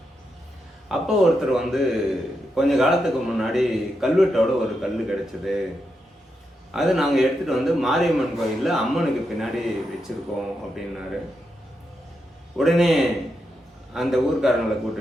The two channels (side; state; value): both; normal; correlation 0.84